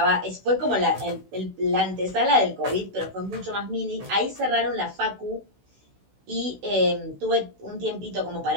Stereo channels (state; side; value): late; left; 16 ms